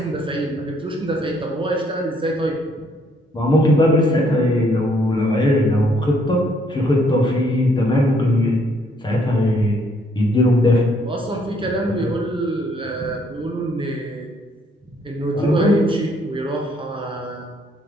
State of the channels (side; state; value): both; normal; correlation 0.67